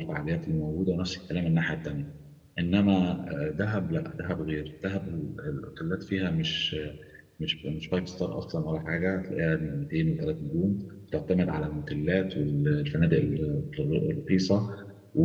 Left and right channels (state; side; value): identical; both; correlation 1.00